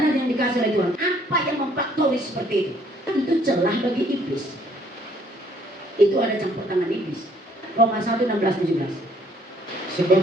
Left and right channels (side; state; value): both; normal; correlation 0.63